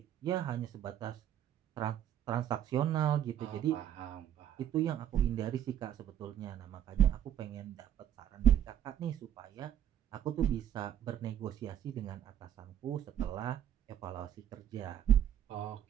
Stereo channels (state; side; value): quieter; left; 10.4 dB